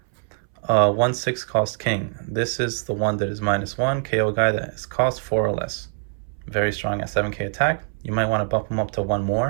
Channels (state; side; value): silent; left; 63 dB below the other